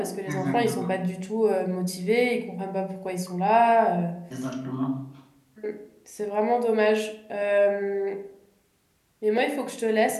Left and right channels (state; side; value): identical; both; correlation 1.00